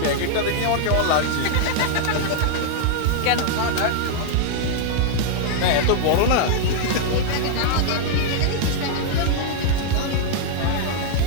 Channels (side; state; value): both; different; correlation -0.01